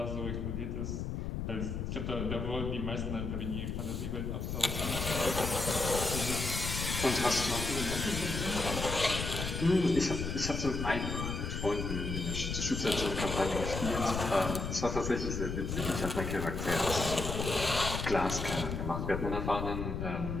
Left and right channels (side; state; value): left; noise; rumble, 3 dB below the sound